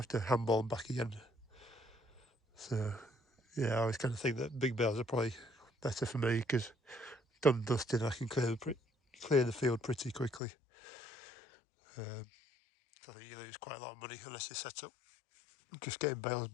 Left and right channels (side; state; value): right; drops out; at 10.4 s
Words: to handball them back again. So yeah, I always kind of think that big bales are probably better for me because done and dusted, I can clear the field pretty quickly. I think you lose quite a lot of money unless you set up just getting bales